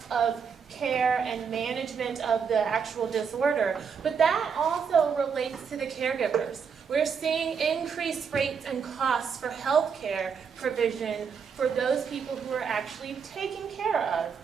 of care and management of the actual disorder, but that also relates to the caregivers. We're seeing increased rates and costs for health care provision for those people who are actually taking care of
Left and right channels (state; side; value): quieter; left; 6.4 dB